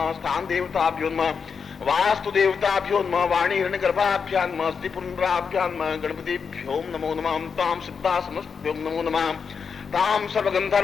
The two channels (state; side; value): quieter; right; 6.0 dB